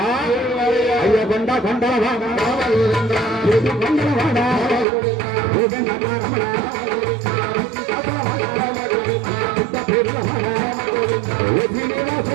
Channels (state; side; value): drops out; left; at 4.9 s